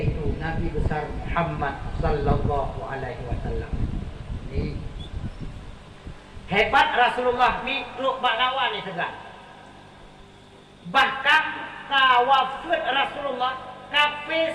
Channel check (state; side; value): identical; both; correlation 1.00